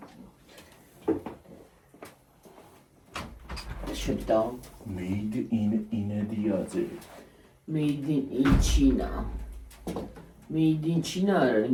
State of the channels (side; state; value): both; identical; correlation 1.00